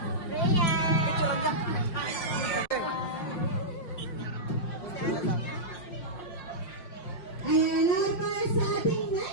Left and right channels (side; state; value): right; late; 5.5 ms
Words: Picture lang dyan. Ayan, now para sa ating